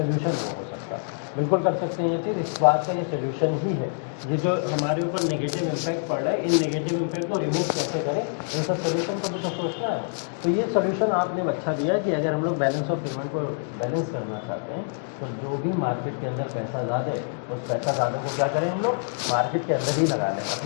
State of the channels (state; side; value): silent; right; digital silence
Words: नहीं हो सकता, बिल्कुल कर सकते हैं ये चीज़, इस बात का ये सोल्यूशन ही है। ये जो हमारे ऊपर नेगेटिव इम्पैक्ट पड़ रहा है, इन नेगेटिव इम्पैक्ट को रिमूव कैसे करें, इन सब सोल्यूशन को भी तो सोचना है। तो ये सोल्यूशन आपने अच्छा दिया कि अगर हम लोग बैलेंस ऑफ पेमेंट को बैलेंस करना चाहते हैं तो जो भी मार्केट के अंदर पैसा ज़्यादा है उस पैसा ज़्यादा को क्या करें, हम लोग मार्केट के अंदर ही लगा लें,